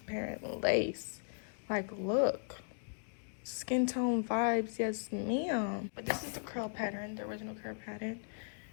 lace. Like, look. Skin tone vibes, yes ma'am. But this is the curl pattern, the original curl pattern.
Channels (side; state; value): right; silent; digital silence